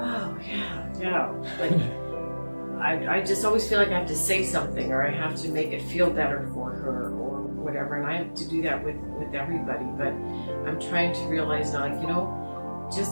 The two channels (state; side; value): inverted; both; correlation -1.00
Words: yeah, like, I just always feel like I have to say something, or I have to make it feel better for her, or whatever, and I have to do that with everybody, but I'm trying to realize now, like, you know, just